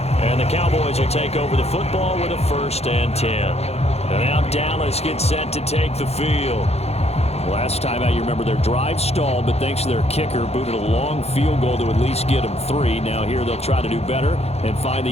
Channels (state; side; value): late; right; 0.30 ms